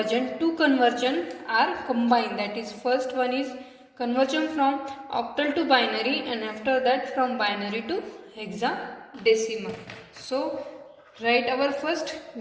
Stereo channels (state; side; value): identical; both; correlation 1.00